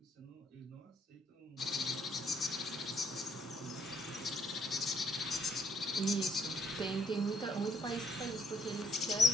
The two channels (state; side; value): normal; both; correlation 0.69